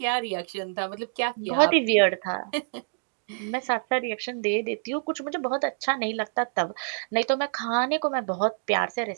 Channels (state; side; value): silent; left; 60 dB below the other